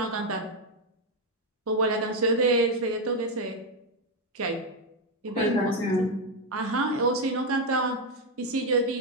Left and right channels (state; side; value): normal; both; correlation 0.05